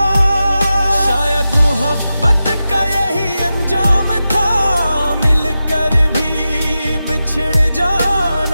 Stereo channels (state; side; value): inverted; both; correlation -0.92